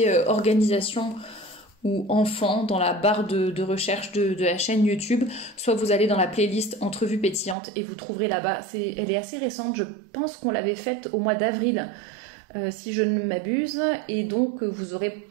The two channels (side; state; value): left; drops out; at 7.6 s